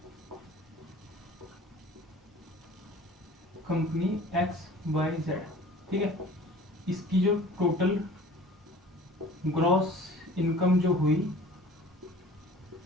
कंपनी XYZ, ठीक है। इसकी जो टोटल ग्रॉस इनकम जो हुई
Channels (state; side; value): normal; both; correlation 0.46